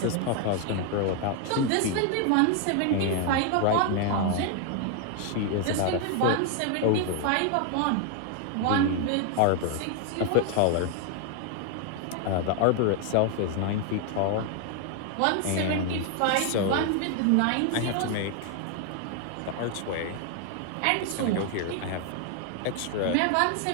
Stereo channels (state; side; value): different; both; correlation 0.01